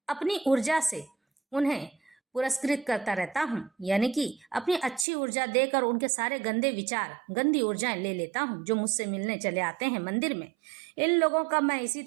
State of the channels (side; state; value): left; drops out; at 5.1 s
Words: अपनी ऊर्जा से उन्हें पुरस्कृत करता रहता हूँ, यानी कि अपनी अच्छी ऊर्जा देकर उनके सारे गंदे विचार, गंदी ऊर्जाएं ले लेता हूँ जो मुझसे मिलने चले आते हैं मंदिर में। इन लोगों का मैं इसी